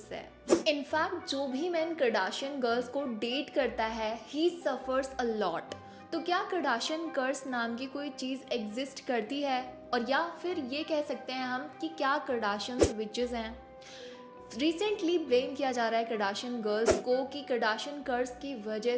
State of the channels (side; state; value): both; identical; correlation 1.00